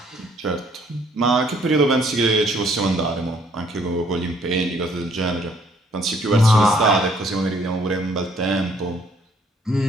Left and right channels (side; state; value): both; normal; correlation 0.64